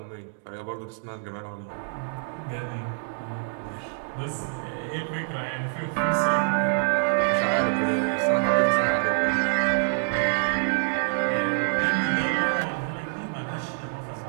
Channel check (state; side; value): silent; left; digital silence